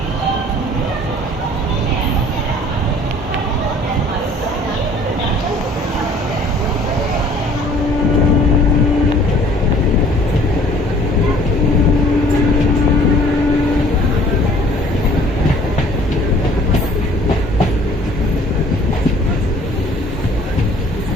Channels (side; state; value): both; normal; correlation 0.54